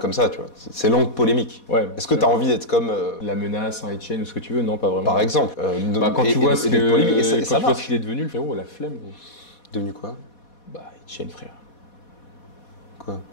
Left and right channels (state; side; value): late; right; 4.2 ms